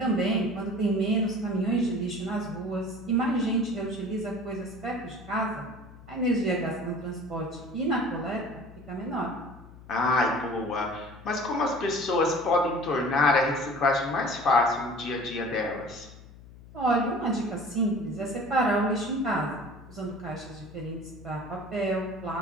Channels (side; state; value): left; noise; hum, 19 dB below the sound